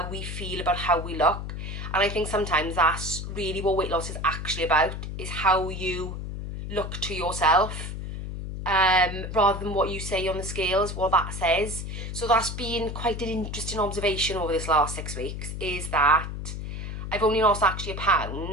we feel about how we look. And I think sometimes that's really what weight loss is actually about, is how you look to yourself. rather than what you say on the scales, what that says. So that's been quite an interesting observation over this last 6 weeks, is that I've only lost actually a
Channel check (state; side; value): noise; left; hum, 6 dB below the sound